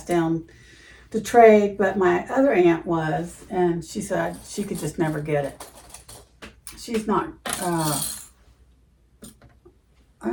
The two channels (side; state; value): both; identical; correlation 1.00